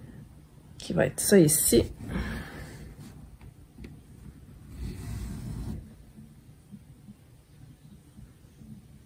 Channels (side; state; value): both; identical; correlation 1.00